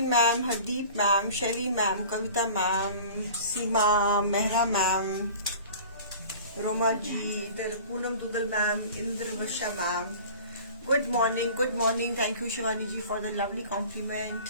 ma'am, Hardeep ma'am, Shaily ma'am, Kavita ma'am, Seema, Mehra ma'am, Roma ji, इधर Poonam Duggal ma'am, Indra Varsha ma'am. Good morning. Thank you Shivani ji for the lovely compliment.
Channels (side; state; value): both; inverted; correlation -0.42